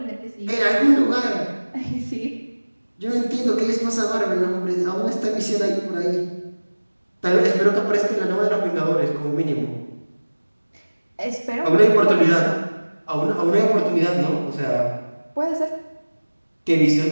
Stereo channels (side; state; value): both; inverted; correlation -1.00